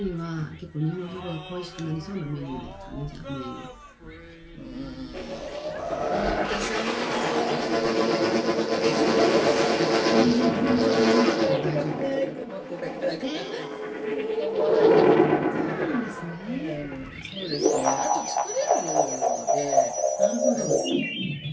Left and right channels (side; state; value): both; identical; correlation 1.00